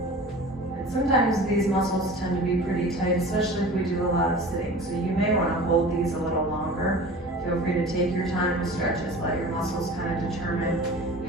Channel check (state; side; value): normal; both; correlation 0.39